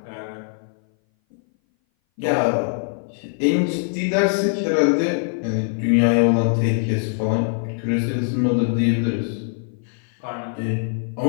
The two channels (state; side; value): silent; right; 59 dB below the other